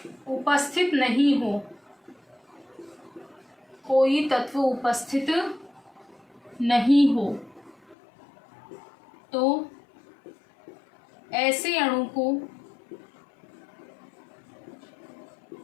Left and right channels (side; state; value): right; drops out; at 8.0 s